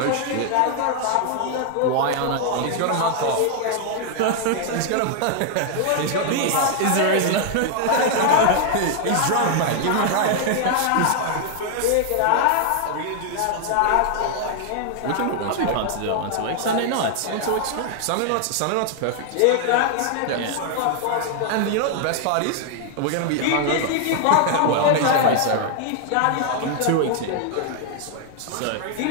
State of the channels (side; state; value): both; different; correlation 0.00